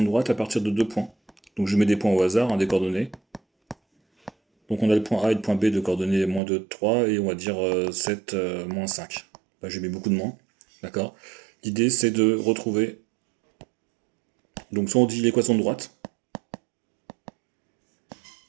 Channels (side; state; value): left; drops out; at 6.4 s